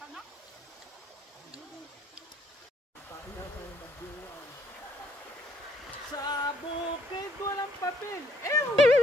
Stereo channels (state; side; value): normal; both; correlation 0.68